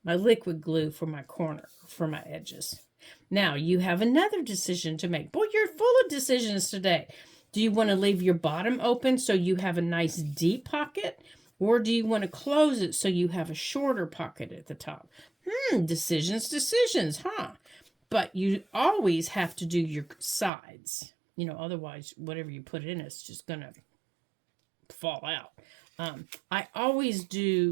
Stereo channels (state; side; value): drops out; left; at 20.5 s